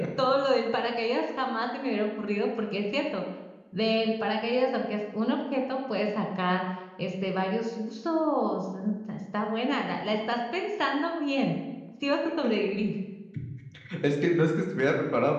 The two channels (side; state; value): both; identical; correlation 1.00